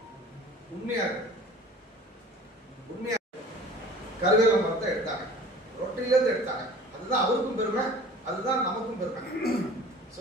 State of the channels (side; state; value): both; normal; correlation 0.45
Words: உண்மையா கருவேல மரத்தை எடுத்தாங்க, ரொட்டிலேருந்து எடுத்தாங்க. அதுதான் அவருக்கும் பெருமை, அதுதான் நமக்கும் பெருமை.